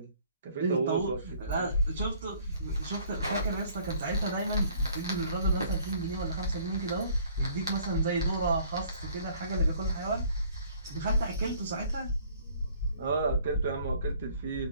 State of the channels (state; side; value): inverted; both; correlation -0.57